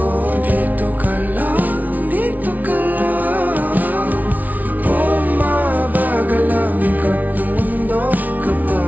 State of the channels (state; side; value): late; left; 0.077 ms